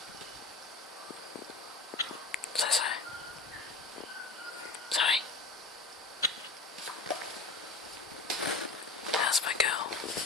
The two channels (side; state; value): right; quieter; 3.5 dB